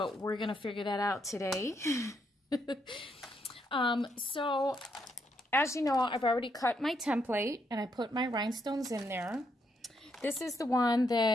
we're going to figure that out today. So as you know, I've already cut my template and I put my rhinestones in there. This is the one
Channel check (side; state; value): both; normal; correlation 0.76